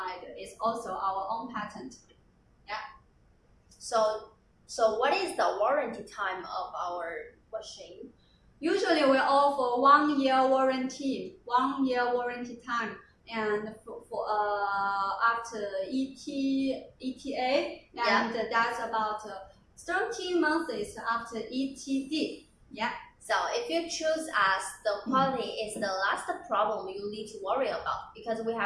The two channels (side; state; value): both; identical; correlation 1.00